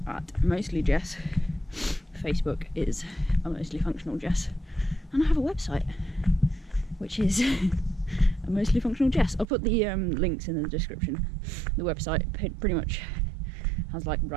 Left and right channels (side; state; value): left; drops out; at 9.5 s